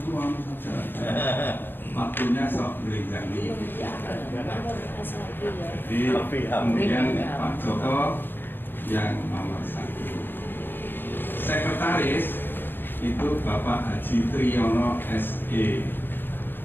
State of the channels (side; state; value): right; late; 0.098 ms